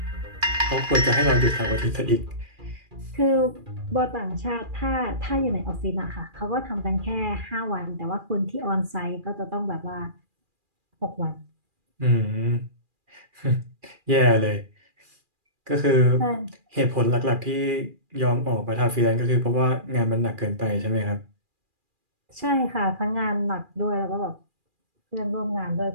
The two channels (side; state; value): left; late; 2.4 ms